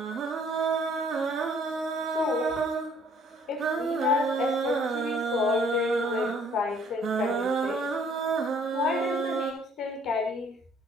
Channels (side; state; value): both; normal; correlation 0.59